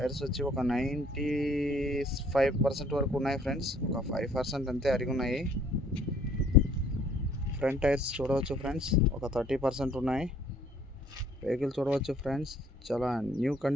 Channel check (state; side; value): normal; both; correlation 0.60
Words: వచ్చి ఒక 95% వరకు ఉన్నాయి ఫ్రెండ్స్, ఒక 5% అంతే అరిగి ఉన్నాయి. ఫ్రంట్ టైర్స్ చూడవచ్చు ఫ్రెండ్స్, ఒక 30% ఉన్నాయి. వెహికల్ చూడవచ్చు ఫ్రెండ్స్, చాలా న్యూ